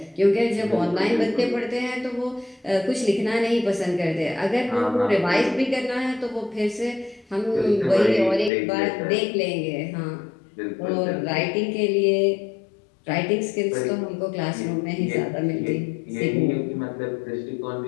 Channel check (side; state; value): right; drops out; at 8.5 s